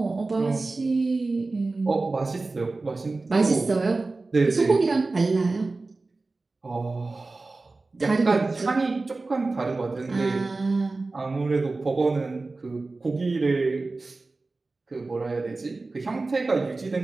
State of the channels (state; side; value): quieter; left; 3.5 dB